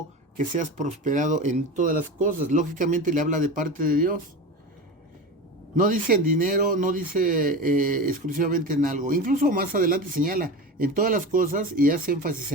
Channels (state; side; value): normal; both; correlation 0.27